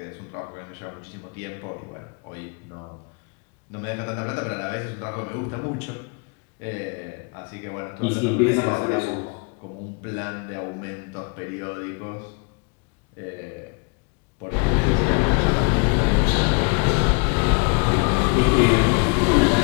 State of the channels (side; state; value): right; quieter; 32.9 dB